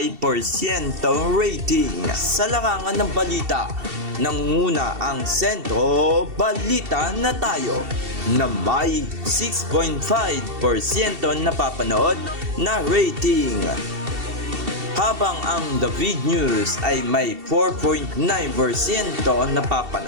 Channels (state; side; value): late; left; 2.7 ms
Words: rating. Sa larangan ng balita, nanguna ang Sentro Balita na Tayo na may 6.5% napapanood na rating. Habang ang David News ay may 4.9%